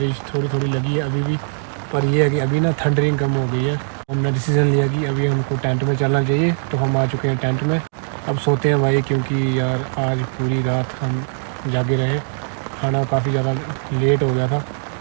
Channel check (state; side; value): silent; left; 66 dB below the other